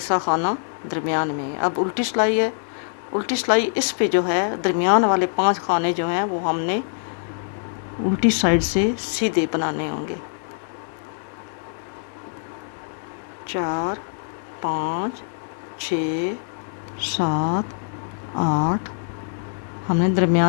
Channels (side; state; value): right; silent; digital silence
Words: खाना दरमियान में है। अब उल्टी सिलाई है, उल्टी सिलाई इस पे जो है दरमियान वाले 5 खाने जो हैं वो हमने उल्टी साइड से सीधे बनाने होंगे। 4 5 6 7 8, हमने